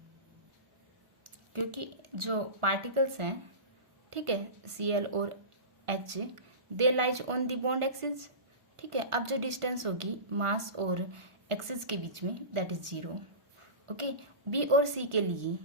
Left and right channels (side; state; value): left; late; 1.4 ms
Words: क्योंकि जो पार्टिकल्स हैं, ठीक है, Cl और H they lies on the bond axis, ठीक है। अब जो डिस्टेंस होगी मास और एक्सिस के बीच में दैट इज 0, ओके। बी और सी के लिए